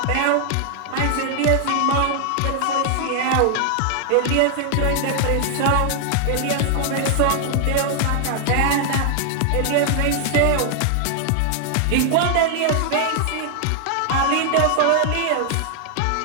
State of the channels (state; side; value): different; both; correlation 0.00